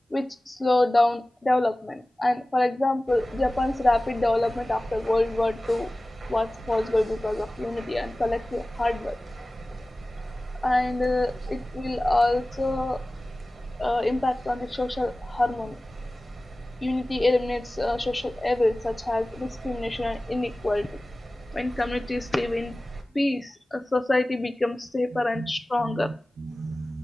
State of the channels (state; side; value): normal; both; correlation 0.97